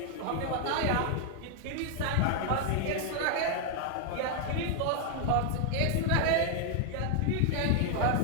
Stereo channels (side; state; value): both; different; correlation 0.00